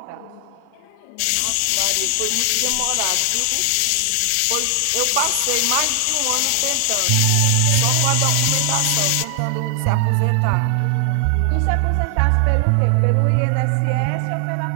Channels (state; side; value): different; both; correlation 0.00